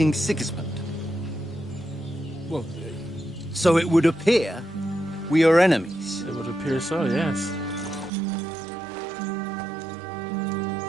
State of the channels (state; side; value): drops out; left; at 8.1 s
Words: Sigismund. well, So it would appear we are enemies. It would appear so, yes.